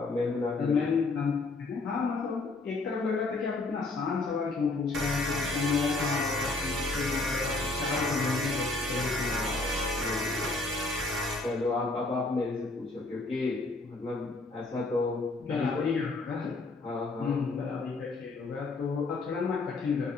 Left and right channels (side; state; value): right; quieter; 3.4 dB